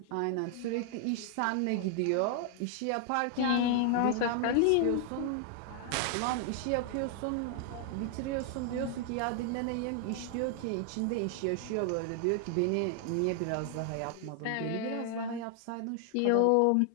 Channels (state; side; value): different; both; correlation 0.00